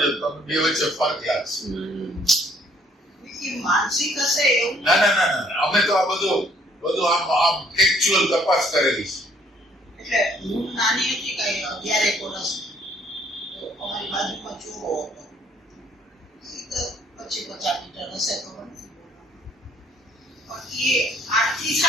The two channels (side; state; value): both; normal; correlation 0.63